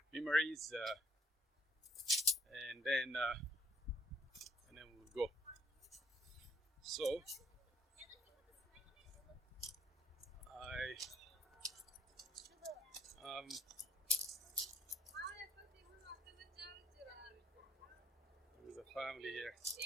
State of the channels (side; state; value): both; normal; correlation 0.66